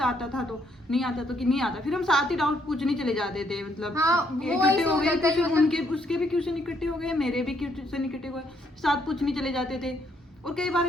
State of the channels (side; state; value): both; normal; correlation 0.72